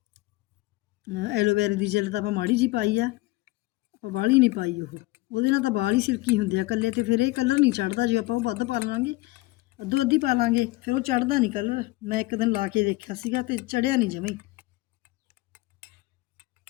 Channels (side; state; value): right; quieter; 19.9 dB